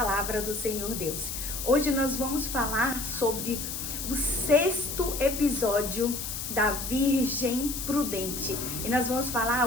do Senhor Deus. Hoje nós vamos falar sobre o 6º episódio da Virgem Prudente. E nós vamos falar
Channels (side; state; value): left; noise; hiss, 5 dB below the sound